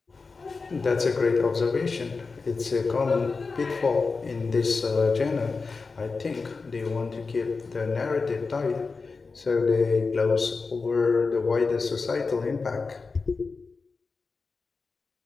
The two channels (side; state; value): right; quieter; 4.3 dB